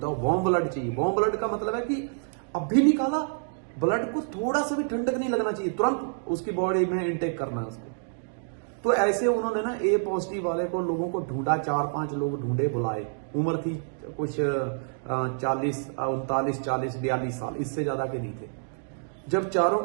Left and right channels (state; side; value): silent; left; digital silence